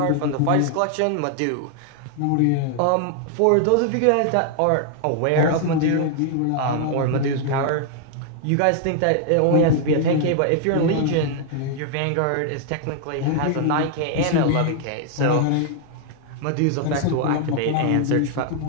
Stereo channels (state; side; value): different; both; correlation 0.00